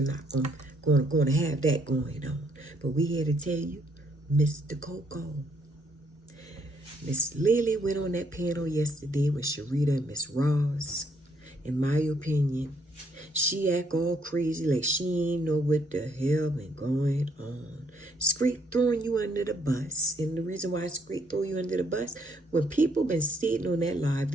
going to have that going on. But we here to tell you, Mr. Coco. Miss Lily went on that panel yesterday with Sharita and Miss Ross. In my opinion, she act all crazy like she ain't know what the hell been going on. Scrape throwing you under the bus. And the reason why Scrape throw you under the bus, when people been sitting on that live,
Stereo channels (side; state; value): both; normal; correlation 0.70